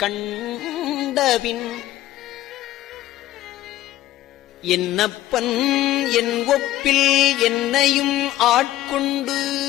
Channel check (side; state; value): right; quieter; 14.6 dB